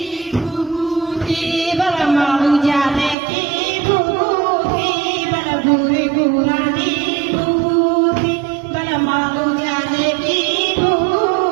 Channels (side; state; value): left; drops out; at 3.2 s